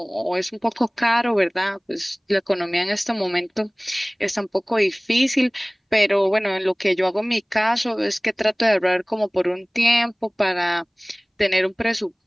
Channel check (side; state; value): both; identical; correlation 1.00